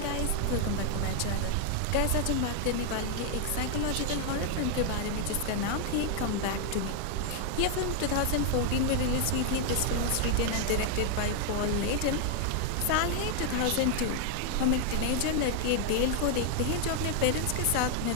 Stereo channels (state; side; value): different; both; correlation 0.00